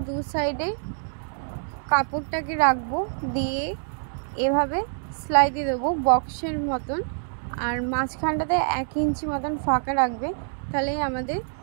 2 সাইডে কাপড়টাকে রাখবো, দিয়ে এভাবে সেলাই দিয়ে দেবো বক্সের মতন। আর মাঝখানটাতে 1 ইঞ্চি মতন ফাঁকা রাখবে, তাহলেই আমাদের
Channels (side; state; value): left; silent; digital silence